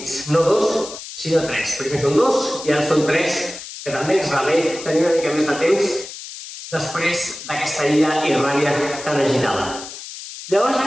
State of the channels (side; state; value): left; noise; hiss, 12 dB below the sound